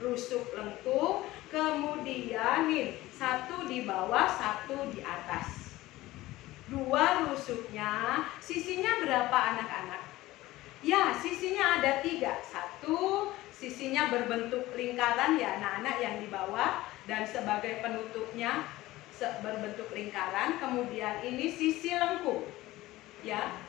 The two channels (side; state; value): right; quieter; 17.5 dB